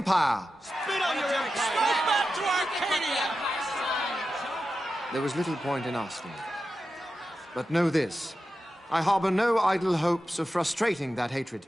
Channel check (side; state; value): both; normal; correlation 0.91